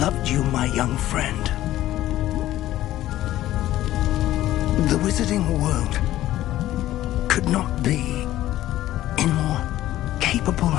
you, my young friend. The wizarding world could not be in more capable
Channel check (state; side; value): quieter; right; 14.3 dB